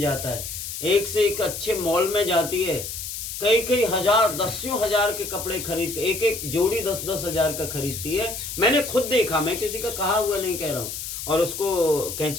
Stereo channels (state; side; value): noise; left; hiss, 7 dB below the sound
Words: है, एक से एक अच्छे मॉल में जाती है, कई हजार 10 हजार के कपड़े खरीद, एक एक जोड़ी 10-10 हजार का खरीदती है। मैंने खुद देखा, मैं किसी का कहा हुआ नहीं कह रहा हूँ। और उसको